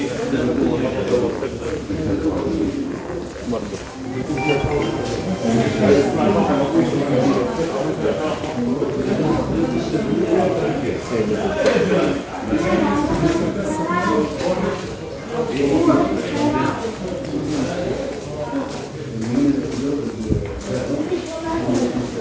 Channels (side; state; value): both; identical; correlation 1.00